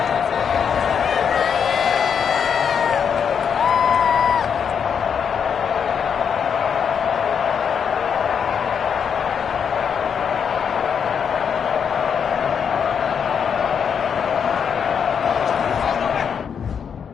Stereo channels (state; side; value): quieter; right; 7.2 dB